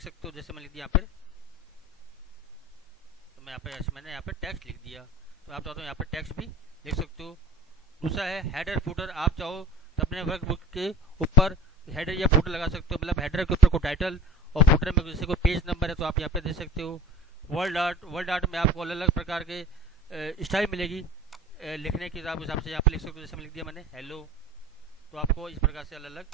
सकते हो। जैसे मैं लिख दिया यहाँ पर, तो मैं यहाँ पे मैंने यहाँ पे टेक्स्ट लिख दिया, तो आप चाहते हो यहाँ पे टेक्स्ट भी लिख सकते हो। दूसरा है हेडर फुटर। आप चाहो तो अपने वर्क बुक के ऊपर हेडर या फुटर लगा सकते हो। मतलब हेडर के ऊपर को टाइटल और फुटर में जैसे कोई पेज नंबर है तो आप यहाँ पे दे सकते हो। वर्ड आर्ट में आपको अलग अलग प्रकार के स्टाइल मिलेगी लिखने के हिसाब से यहाँ पे लिख सकते हो। जैसे मैं लिख दिया मैंने हेलो, तो आपको इस प्रकार से अलग अलग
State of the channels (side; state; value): both; normal; correlation 0.40